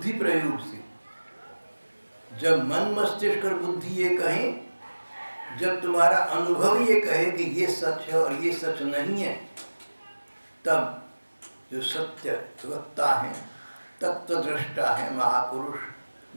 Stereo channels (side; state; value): both; inverted; correlation -1.00